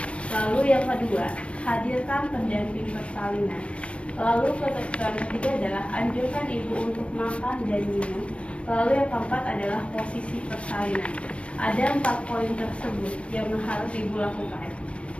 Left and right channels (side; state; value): right; late; 0.060 ms